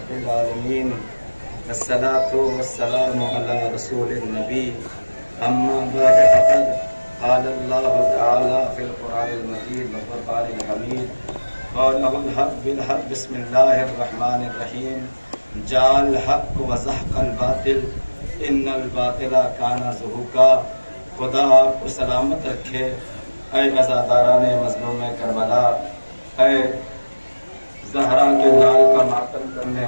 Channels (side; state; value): both; inverted; correlation -1.00